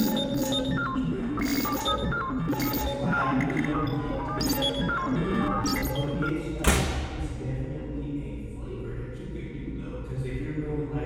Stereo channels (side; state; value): both; identical; correlation 1.00